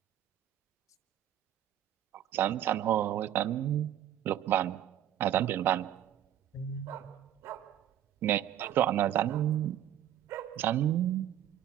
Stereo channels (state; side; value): quieter; left; 11.4 dB